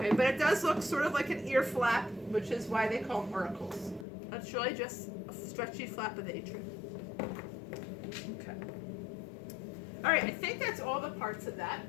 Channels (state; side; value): drops out; right; at 4.0 s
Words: but it does look sort of like an ear flap, which is why they call them auricles. It's really just a stretchy flap of the atrium. Okay. All right, I think that's all the parts of that.